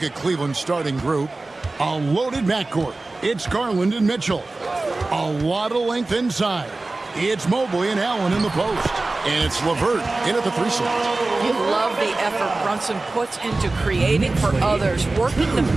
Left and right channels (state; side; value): quieter; left; 3.2 dB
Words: at Cleveland's starting group. A loaded backcourt. It's Garland and Mitchell. A lot of length inside. It's Mobley and Allen in the post. And it's LeVert in at the 3 slot. You love the effort Brunson puts into creating for others, working to